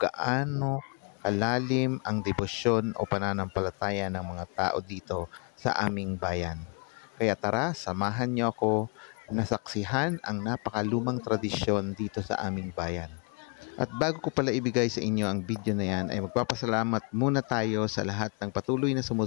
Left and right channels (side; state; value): right; quieter; 36.8 dB